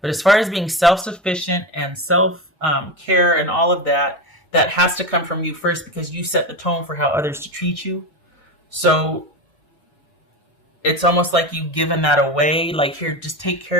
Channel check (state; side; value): normal; both; correlation 0.20